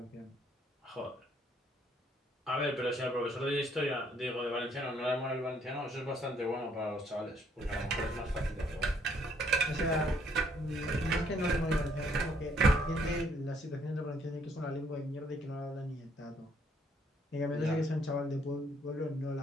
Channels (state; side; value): normal; both; correlation 0.67